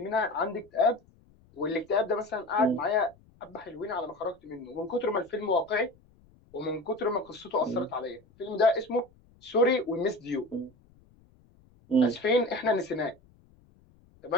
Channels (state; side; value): noise; left; rumble, 29 dB below the sound